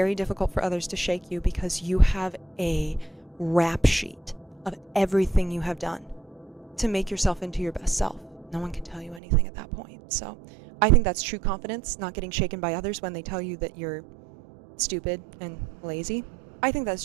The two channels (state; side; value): drops out; left; at 9.2 s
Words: difficult for others to shake you because you have a rap sheet of everything you have done to make yourself into your best self. No one can tell you anything at that point. So I think that's true confidence, not getting shaken by others when they tell you that you're stupid and lazy. I think that's